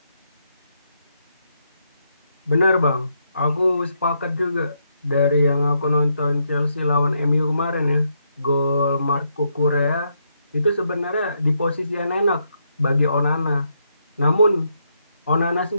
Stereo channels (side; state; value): both; inverted; correlation -0.78